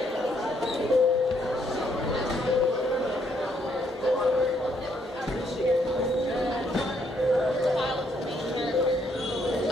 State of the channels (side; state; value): both; normal; correlation 0.71